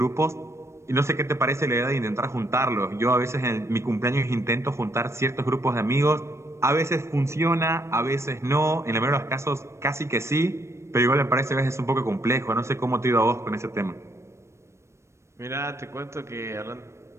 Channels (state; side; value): late; left; 0.13 ms